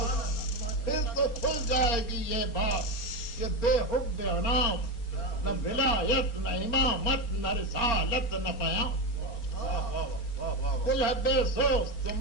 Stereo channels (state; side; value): late; right; 4.2 ms